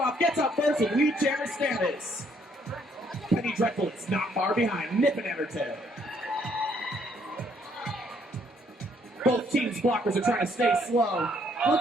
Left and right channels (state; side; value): normal; both; correlation 0.68